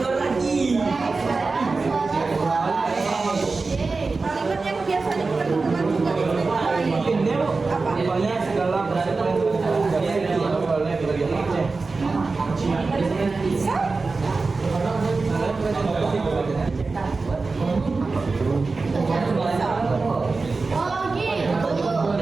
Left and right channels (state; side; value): quieter; left; 4.0 dB